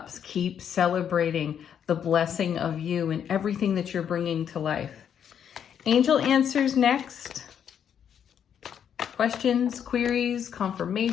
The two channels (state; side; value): quieter; right; 8.5 dB